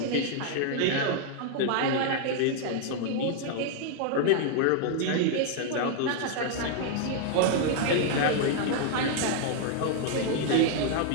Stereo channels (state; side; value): different; both; correlation 0.00